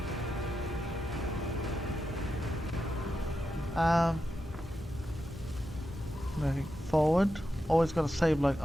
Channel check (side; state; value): both; normal; correlation 0.88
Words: Moving forward. Always gotta save like